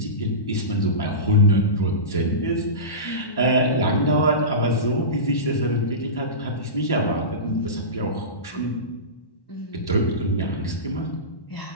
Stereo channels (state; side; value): late; right; 1.1 ms